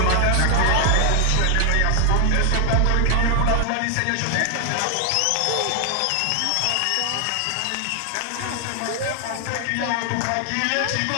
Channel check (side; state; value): both; different; correlation 0.00